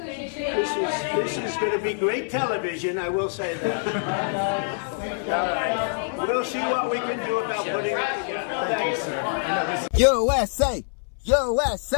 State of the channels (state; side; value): silent; right; 62 dB below the other